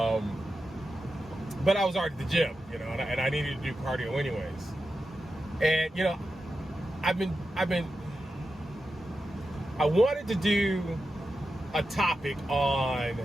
But I was already at the gym, and I needed to do cardio anyways. And I wanted to do a topic on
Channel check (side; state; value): both; normal; correlation 0.90